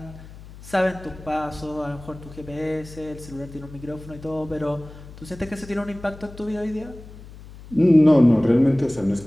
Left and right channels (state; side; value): noise; left; hum, 17 dB below the sound